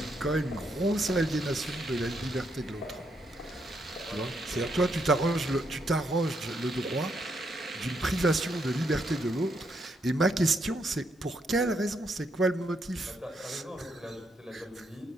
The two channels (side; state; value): both; normal; correlation 0.76